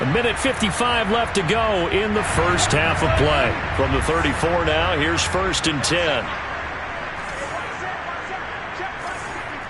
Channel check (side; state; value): both; identical; correlation 1.00